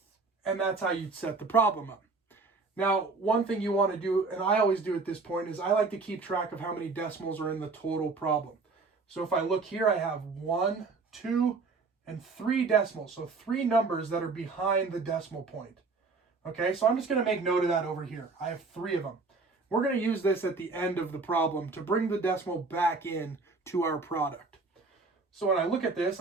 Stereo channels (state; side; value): quieter; left; 4.1 dB